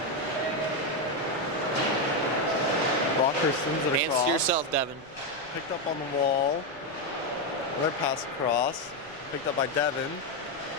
Rockhurst sends it Hands across. to yourself, Devin. Picked up on the wall. Another pass across. Picked up by Devin.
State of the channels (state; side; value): noise; left; rumble, 25 dB below the sound